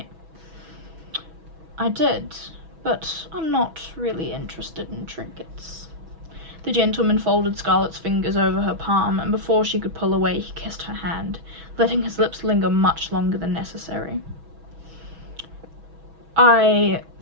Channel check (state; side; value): late; left; 6.1 ms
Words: "I did, but I'm not really interested in trinkets." The gentleman folded Scarlet's fingers over her palm, and before she could pull away, he kissed her hand, letting his lips linger much longer than necessary. "I